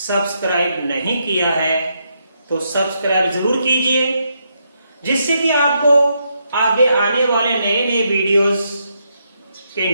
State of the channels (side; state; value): both; inverted; correlation -0.79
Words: नहीं किया है तो सब्सक्राइब जरूर कीजिए, जिससे कि आपको आगे आने वाले नए नए वीडियोस के